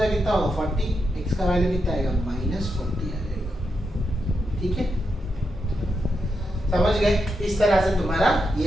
कितना होगा 40, x का वैल्यू कितना आएगा -40 आ जाएगा, ठीक है, समझ गए। इस तरह से तुम्हारा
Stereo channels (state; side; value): normal; both; correlation 0.84